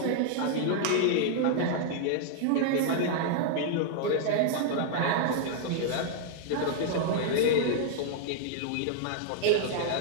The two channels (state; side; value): different; both; correlation -0.01